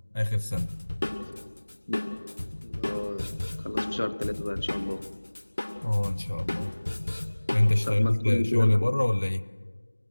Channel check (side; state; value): both; inverted; correlation -1.00